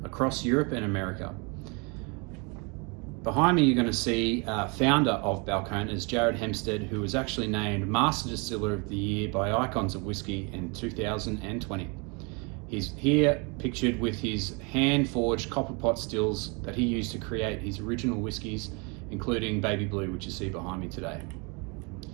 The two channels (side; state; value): left; quieter; 31.5 dB